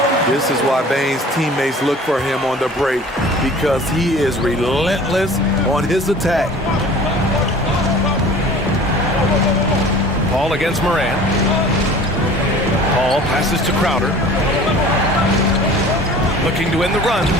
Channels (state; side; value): normal; both; correlation 0.45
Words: This is why Bane's teammates look for him on the break, because he is relentless on his attack. Paul against Moran. Paul passes to Crowder. Looking to end the run.